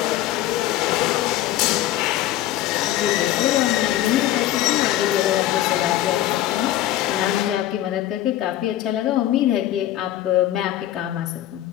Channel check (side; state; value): right; quieter; 13.6 dB